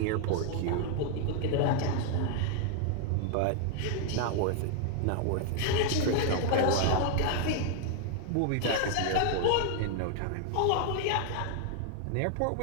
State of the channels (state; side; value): different; both; correlation 0.00